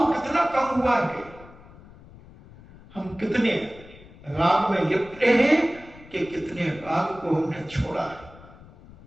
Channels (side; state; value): left; noise; rumble, 21 dB below the sound